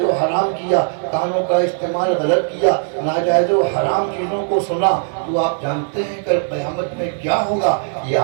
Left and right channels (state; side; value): silent; left; 67 dB below the other